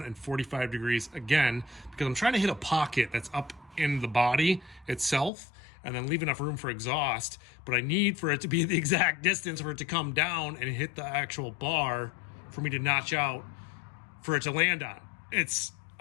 and 45 degrees again, because I'm trying to hit a pocket that's up in the body itself and then leave enough room for exhaust, but I need for it to be the exact distance for it to come down and hit the actual bar for me to notch out for it to land on. It's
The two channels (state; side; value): drops out; right; at 5.3 s